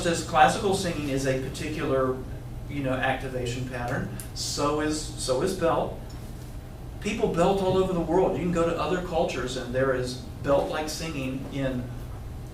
as classical singing is a particular, you know, activation pattern, so is belt. People belt all over the world. You can go to other cultures and there is belt-like singing in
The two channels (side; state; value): both; identical; correlation 1.00